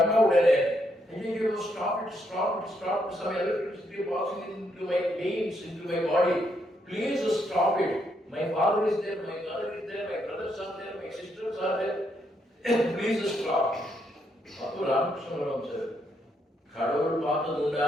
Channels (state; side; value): normal; both; correlation 0.76